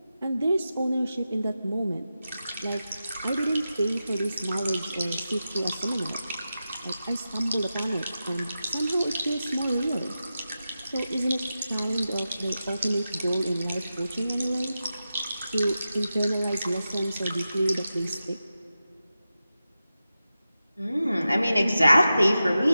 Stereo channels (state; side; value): inverted; both; correlation -0.92